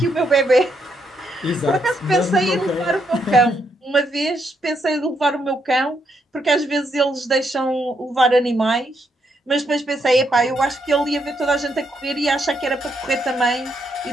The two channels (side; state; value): both; normal; correlation 0.77